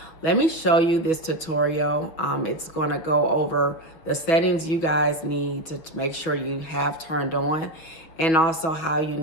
let me show you this tutorial. It's going to go over the settings you guys need to make sure you have turned on, and also how you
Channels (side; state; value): right; late; 6.1 ms